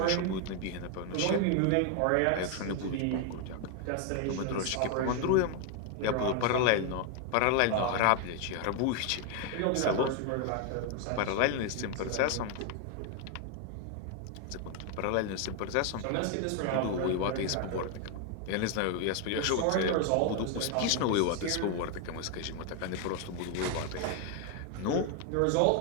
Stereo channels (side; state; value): both; different; correlation 0.01